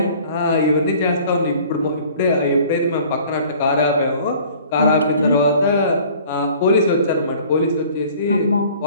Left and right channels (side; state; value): both; inverted; correlation -0.50